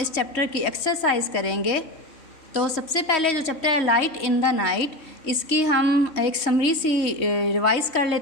चैप्टर की एक्सरसाइज करेंगे। तो सबसे पहले जो चैप्टर है लाइट इन द नाइट, इसकी हम एक समरी सी रिवाइज़ कर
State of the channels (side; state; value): right; late; 3.1 ms